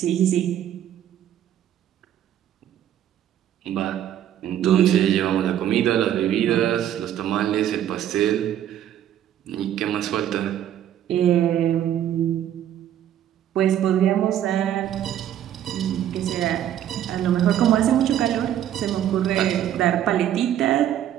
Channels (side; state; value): left; quieter; 10.9 dB